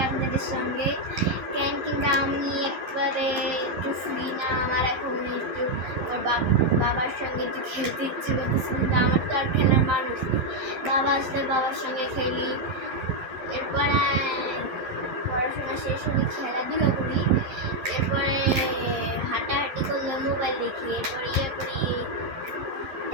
আপনাদের সঙ্গে। কিন্তু আমি একবারে একটু ফ্রি না, আমার এখন একটু বাবার সঙ্গে একটু খেলতে ইচ্ছে করতেছে, কিন্তু আমার তো আর খেলার মানুষ নেই। বাবা আসলে বাবার সঙ্গে খেলি, এরপরে পড়াশোনা শেষ হলে খেলাধুলা করি, এরপরে হাঁটাহাঁটি করলে মোবাইল দেখি, এরপরে ইয়ে করি।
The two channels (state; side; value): late; left; 11 ms